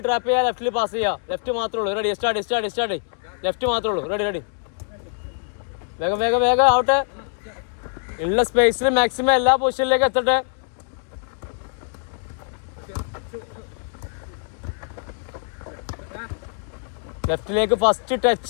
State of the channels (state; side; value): silent; right; digital silence